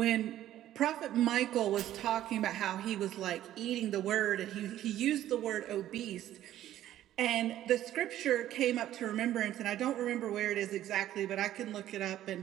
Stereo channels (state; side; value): quieter; left; 12.8 dB